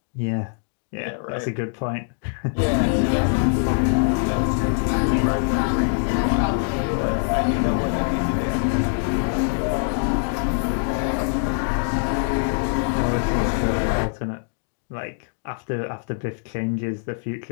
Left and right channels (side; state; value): right; silent; digital silence